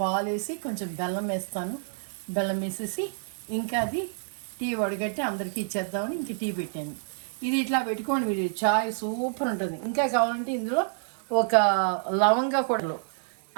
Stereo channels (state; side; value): silent; left; digital silence